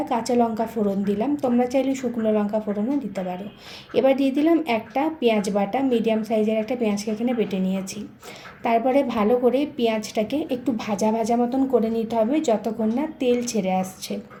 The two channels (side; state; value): both; identical; correlation 1.00